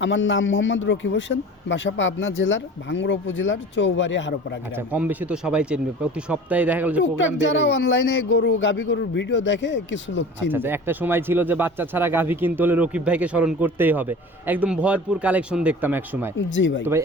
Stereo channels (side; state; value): both; normal; correlation 0.39